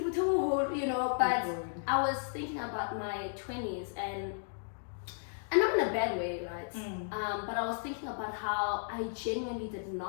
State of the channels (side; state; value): right; silent; digital silence